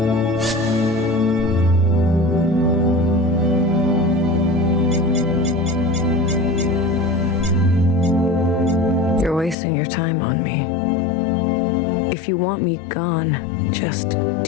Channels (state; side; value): drops out; right; at 9.6 s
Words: Wasting your time on me. If you want me gone, just